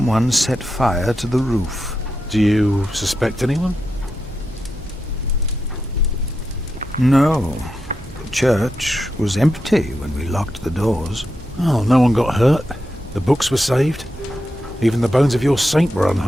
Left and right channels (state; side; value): normal; both; correlation 0.86